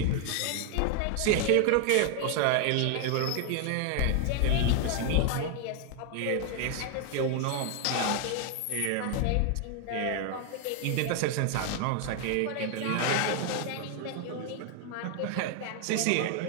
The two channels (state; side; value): different; both; correlation 0.01